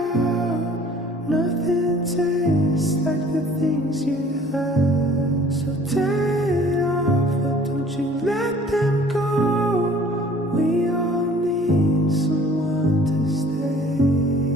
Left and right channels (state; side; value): normal; both; correlation 0.52